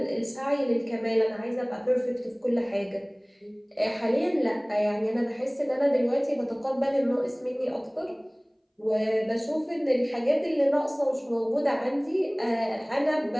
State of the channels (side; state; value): both; identical; correlation 1.00